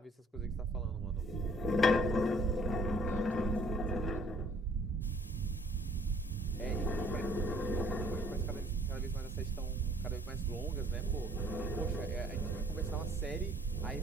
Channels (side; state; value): both; normal; correlation 0.59